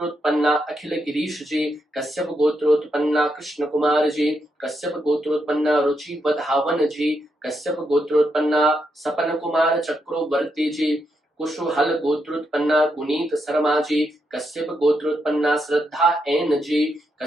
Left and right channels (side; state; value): both; normal; correlation 0.82